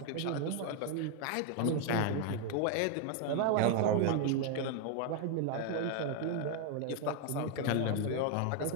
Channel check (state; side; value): different; both; correlation 0.00